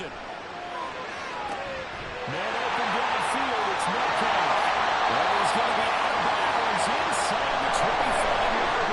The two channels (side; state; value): both; identical; correlation 1.00